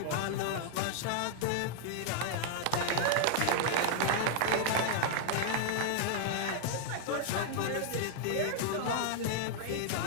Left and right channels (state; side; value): different; both; correlation -0.01